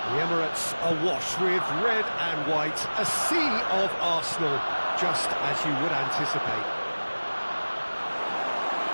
The Emirates awash with red and white, a sea of Arsenal, just as you would anticipate.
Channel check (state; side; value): inverted; both; correlation -1.00